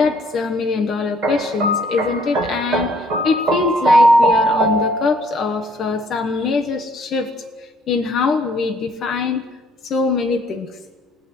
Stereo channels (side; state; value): both; normal; correlation 0.62